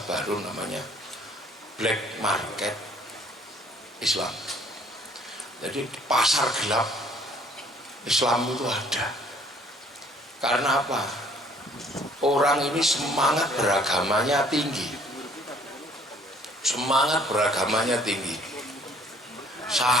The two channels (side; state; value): both; normal; correlation 0.59